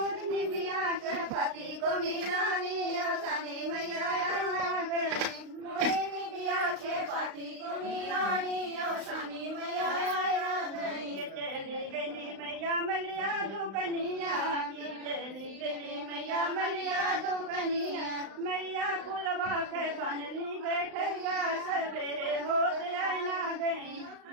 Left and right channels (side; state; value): left; late; 35 ms